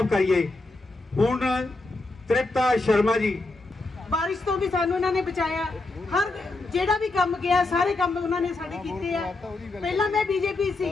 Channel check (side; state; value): right; quieter; 3.2 dB